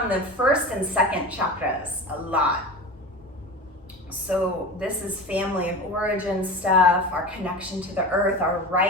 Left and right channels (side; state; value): both; normal; correlation 0.30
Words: the first and second chakras a lot. So this is family of origin stuff, our connection to the earth, our